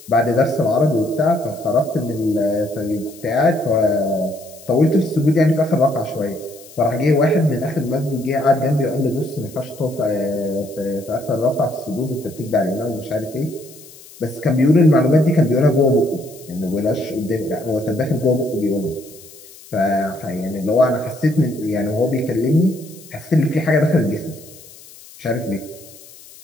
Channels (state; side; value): noise; left; hiss, 21 dB below the sound